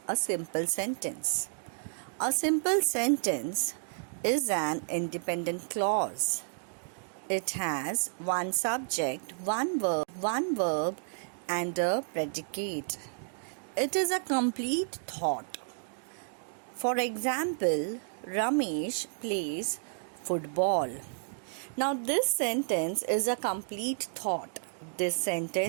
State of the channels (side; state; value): left; silent; digital silence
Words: a simple sentence. A simple sentence is an independent clause. It has one subject, one verb, and a predicate. It is a complete thought. For example, Ramesh plays football. Now, this sentence is a complete thought. This